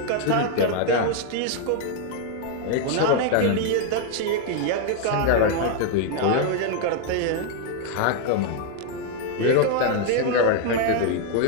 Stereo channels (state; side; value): different; both; correlation 0.00